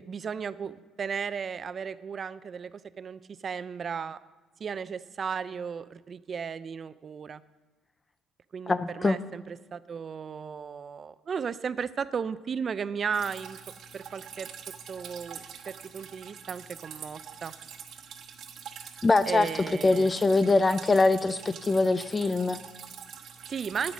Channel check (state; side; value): normal; both; correlation 0.88